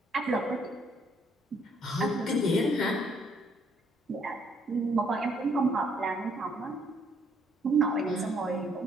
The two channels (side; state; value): both; normal; correlation 0.68